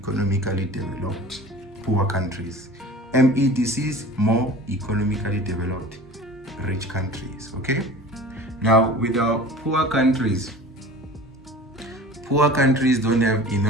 developed, poor countries. MEDCs, more economically developed, rich countries, okay? Now, with our poor countries don't have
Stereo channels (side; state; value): both; normal; correlation 0.40